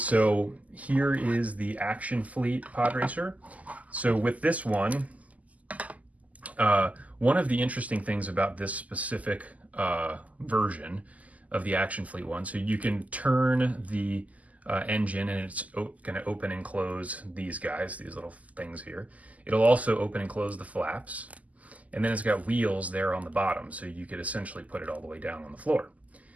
here is the Action Fleet pod racer. So with this one, one of the interesting things about this specific version of the Action Fleet one, so you can turn the engine and it's going to open and close these guys, these little things here. It'll also open and close the flaps. And then it's got wheels there on the bottom, so you could essentially put it all the way down on the floor.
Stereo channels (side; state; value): left; late; 0.074 ms